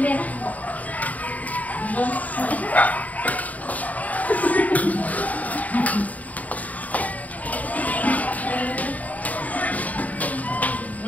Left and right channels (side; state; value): right; late; 0.073 ms